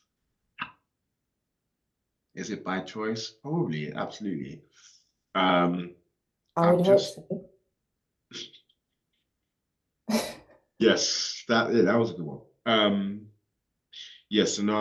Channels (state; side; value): identical; both; correlation 1.00